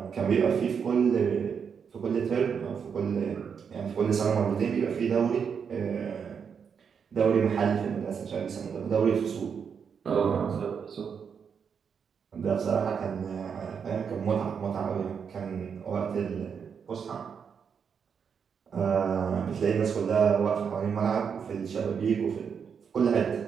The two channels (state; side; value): quieter; left; 6.7 dB